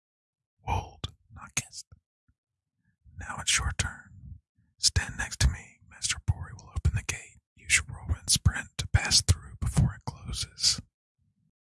Wold, not kissed. Now it's your turn. Stand next to me. Master Bori will open the gate. Use your Whirlwind Sprint to pass through before it closes.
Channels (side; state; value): both; identical; correlation 1.00